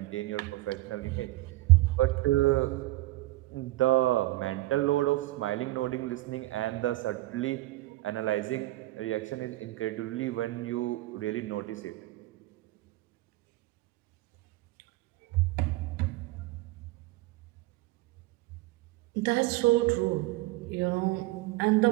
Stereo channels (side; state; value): left; quieter; 18.7 dB